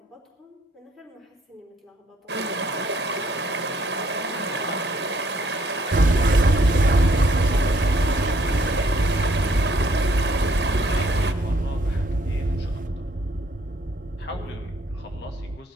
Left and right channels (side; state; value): both; normal; correlation 0.66